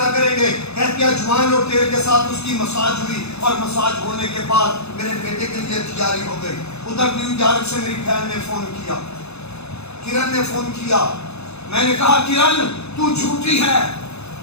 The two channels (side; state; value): right; late; 0.80 ms